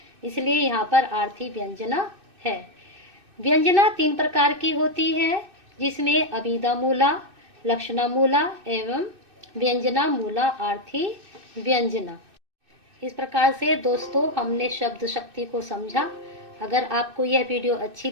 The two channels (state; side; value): late; left; 2.6 ms